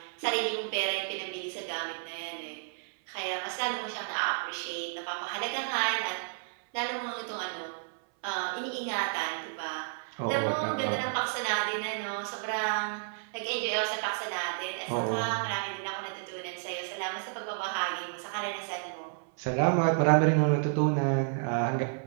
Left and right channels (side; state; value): left; silent; 57 dB below the other